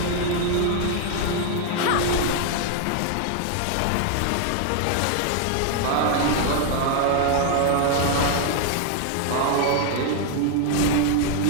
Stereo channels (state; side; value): different; both; correlation 0.00